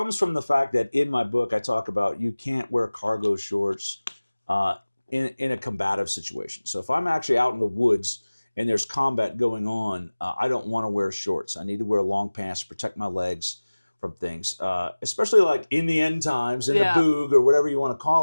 from the fact that in my book, I talk about you can't wear cargo shorts in a combative situation. So if I'm actually out in the woods and there's combat going on, I don't want to wear shorts. I need to wear long pants to protect my legs from things, especially like in the end times, in the boog or whatever you want to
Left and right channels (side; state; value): both; inverted; correlation -1.00